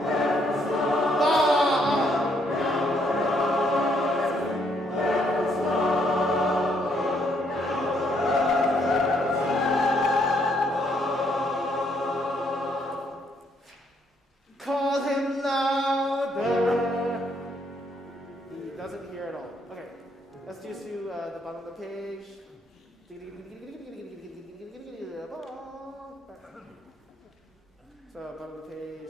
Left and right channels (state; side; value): normal; both; correlation 0.71